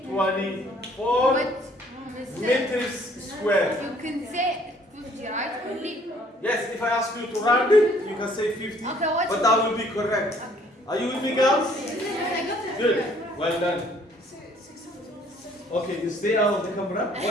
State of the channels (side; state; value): both; normal; correlation 0.60